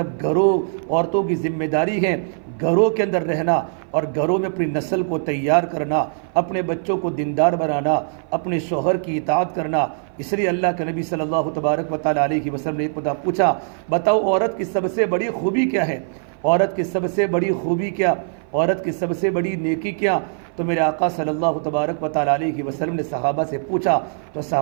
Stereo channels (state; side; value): silent; left; 56 dB below the other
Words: عورتوں کی ذمہ داری ہے گھروں کے اندر رہنا اور گھروں میں اپنی نسل کو تیار کرنا، اپنے بچوں کو دیندار بنانا، اپنے شوہر کی اطاعت کرنا۔ اس لیے اللہ کے نبی صلی اللہ تبارک و تعالیٰ علیہ وسلم نے ایک پوچھا، بتاؤ عورت کی سب سے بڑی خوبی کیا ہے؟ عورت کی سب سے بڑی خوبی کیا؟ عورت کی سب سے بڑی نیکی کیا؟ تو میرے آقا صلی اللہ تبارک و تعالیٰ علیہ وسلم نے صحابہ سے پوچھا، تو